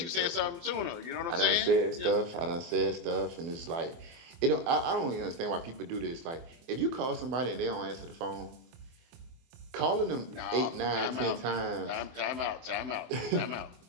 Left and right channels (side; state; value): left; late; 24 ms